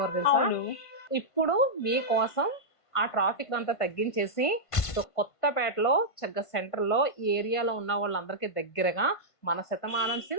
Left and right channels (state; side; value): late; right; 1.5 ms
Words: తెలుసా. ఇప్పుడు మీకోసం ఆ ట్రాఫిక్ అంతా తగ్గించేసి కొత్తపేటలో చక్కగా సెంటర్ లో ఈ ఏరియాలో ఉన్న వాళ్ళందరికీ దగ్గరగా మన శతమానం